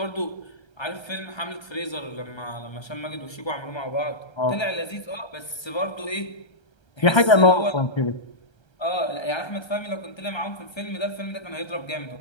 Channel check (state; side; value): late; right; 1.3 ms